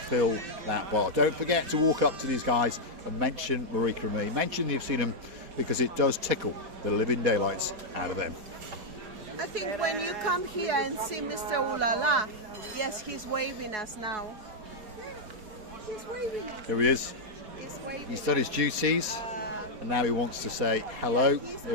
that bar. Don't forget to walk up to these guys and mention Marika and me. Mention you've seen them, because it does tickle the living daylights out of them. I think when you come here and see Mr. Ulala, yes, he's waving us now. He's waving us. Here he is. He's waving. He's done his duties, and now he wants to say hello.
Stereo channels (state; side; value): late; left; 4.2 ms